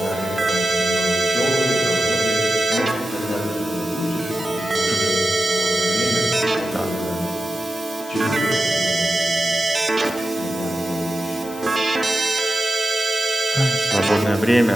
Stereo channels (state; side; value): noise; left; hiss, 18 dB below the sound